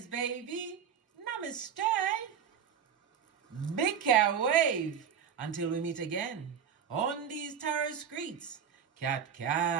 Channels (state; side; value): quieter; left; 7.8 dB